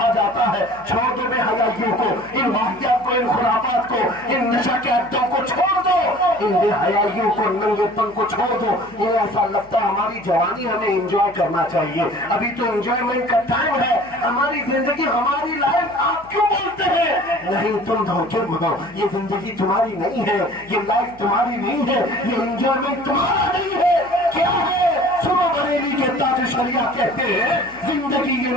जाता है छोड़ दो बेहयाइयों को, इन वाहियात को, इन खुराफात को, इन नशा के अड्डों को छोड़ दो, इन बेहयाइयों को, नंगेपन को छोड़ दो, ये ऐसा लगता है हमारी जवानी हमें एंजॉय करना चाहिए। अभी तो एंजॉयमेंट का टाइम है, हमारी जिंदगी हमारी लाइफ आप क्यों बोलते हैं? नहीं, तुम धोखे में हो, ये जिंदगी तुम्हारी नहीं है, ये लाइफ तुम्हारी नहीं है, ये एंजॉयमेंट तुम्हारा नहीं है। क्या है? सुनो बरेली के ताज शरिया कहते हैं, जिंदगी ये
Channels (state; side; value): noise; left; hum, 25 dB below the sound